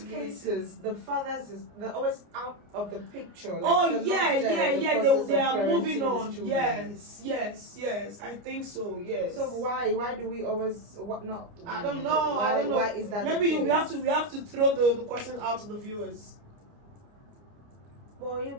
cases, the fathers they're always out of the picture. Like they are moving on. Yes. I think so. Yes. So why do we always not? I don't know. Why is that? Maybe we have to throw the question out to the viewers. Well, you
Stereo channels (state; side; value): late; left; 29 ms